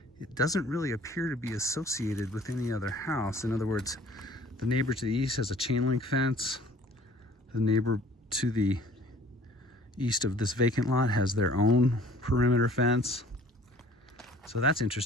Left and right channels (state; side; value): normal; both; correlation 0.53